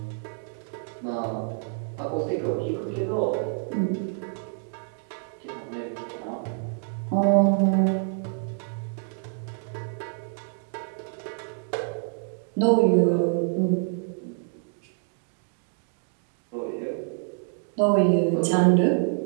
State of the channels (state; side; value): silent; left; 60 dB below the other